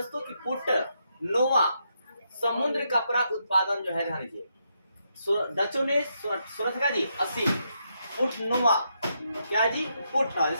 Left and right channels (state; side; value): inverted; both; correlation -0.80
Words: की पुट नोवा समुद्र कपड़ा उत्पादन जो है, ध्यान दीजिए डचों ने 1680 पुट नोवा, क्या जी? पुट,